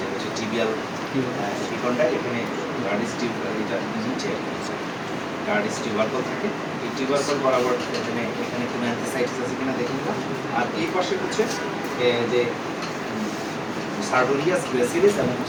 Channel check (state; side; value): identical; both; correlation 1.00